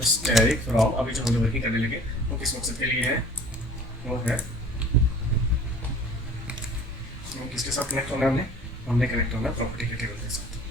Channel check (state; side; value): normal; both; correlation 0.47